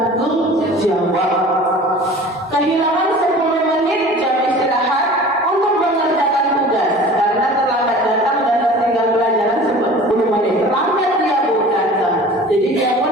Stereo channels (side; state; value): both; normal; correlation 0.42